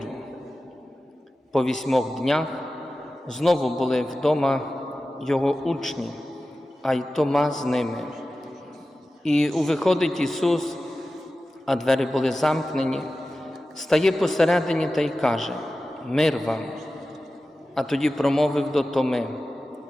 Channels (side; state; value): both; normal; correlation 0.94